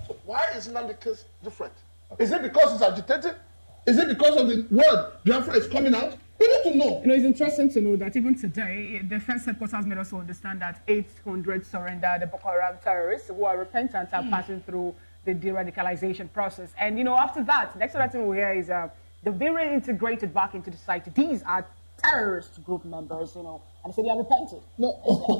So why is Nnamdi case different? Is it because it's agitated? Is it because of the word Biafra is coming out? We need to know. It's interesting to know that even today, the defense headquarters made us understand that 800 surrendered the Boko Haram terrorists who are repentant are passing through the de-radicalization process. And, after that, the next other thing we hear is they've been reintegrated back into the society. These are terrorist group members, and they say they are repented. No,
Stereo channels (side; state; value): both; inverted; correlation -1.00